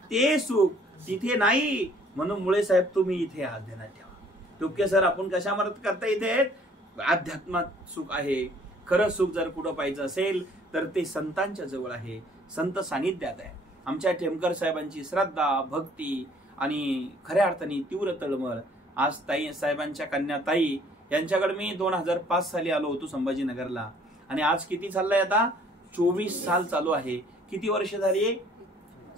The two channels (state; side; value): normal; both; correlation 0.58